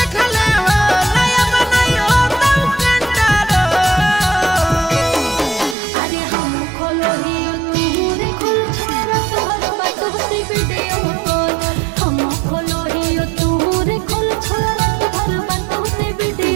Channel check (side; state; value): left; drops out; at 5.8 s